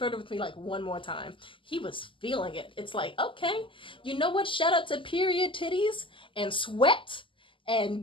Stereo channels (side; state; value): right; late; 0.25 ms